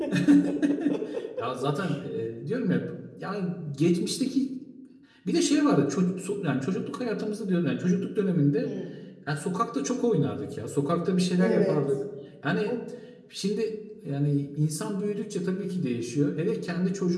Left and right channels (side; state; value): both; identical; correlation 1.00